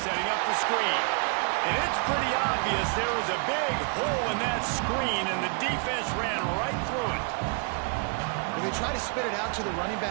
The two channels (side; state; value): left; quieter; 39.0 dB